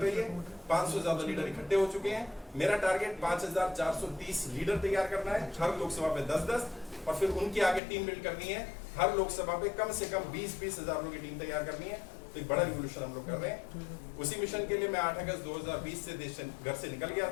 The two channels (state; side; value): drops out; right; at 7.8 s